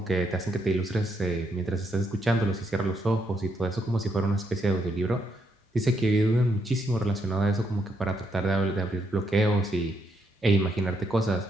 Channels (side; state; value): both; normal; correlation 0.77